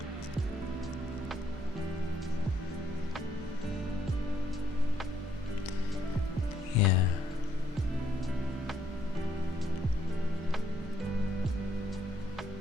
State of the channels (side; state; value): both; normal; correlation 0.71